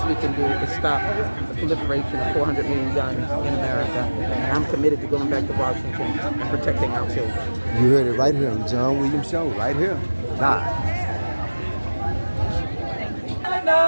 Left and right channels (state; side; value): inverted; both; correlation -1.00